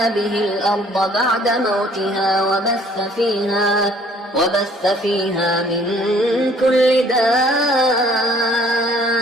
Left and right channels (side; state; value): both; normal; correlation 0.58